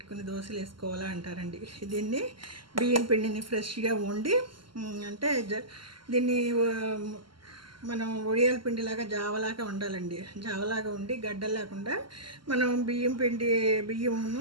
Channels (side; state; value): left; late; 0.72 ms